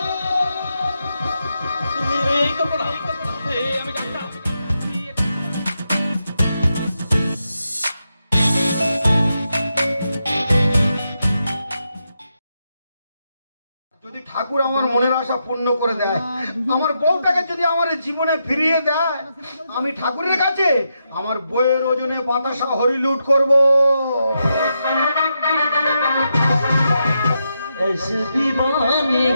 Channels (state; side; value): inverted; both; correlation -0.84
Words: এই কল্পনা, আমি যদি ঠাকুর আমার মনের আশা পূর্ণ করে দেয়, আমার বউটাকে যদি আমার জীবনে ফিরিয়ে দেয়, আমি ঠাকুরের কাছে আমার বইয়ের ওজনে বাতাসা হরিলুট করব। ऐसे दीवानगी